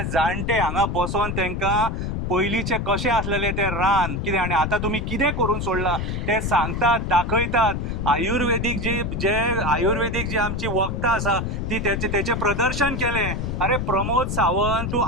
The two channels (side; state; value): left; noise; rumble, 2 dB below the sound